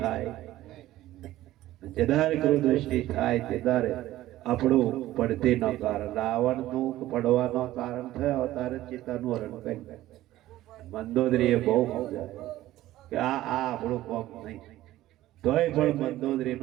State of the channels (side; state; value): left; quieter; 15.1 dB